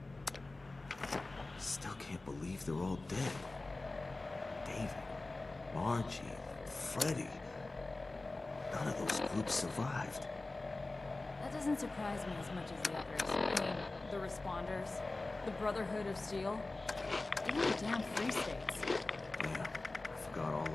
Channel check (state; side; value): quieter; right; 3.1 dB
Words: Still can't believe they're all dead. David, Margie, Freddy. None of those groups survived. That doesn't surprise me as much as the others. I mean, the Responders, the Brotherhood of Steel, even the damn Free States. Yeah, I forgot all